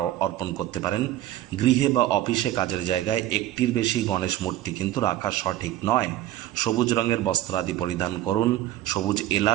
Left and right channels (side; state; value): left; quieter; 13.8 dB